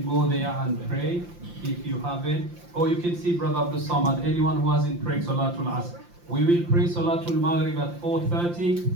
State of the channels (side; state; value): left; late; 5.8 ms